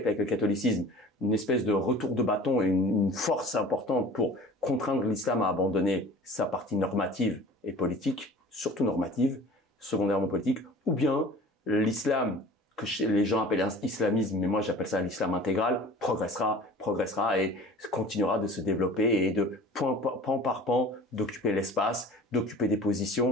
avec le catholicisme, une espèce de retour de bâton et une force importante pour contraindre l'islam à abandonner sa partie normative et politique, surtout normative, secondairement politique, ou bien l'islam, que les gens appellent islamisme, mais moi j'appelle ça l'islam intégral, progressera et continuera de se développer et de pan par pan d'occuper l'espace, d'occuper des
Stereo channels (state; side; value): normal; both; correlation 0.43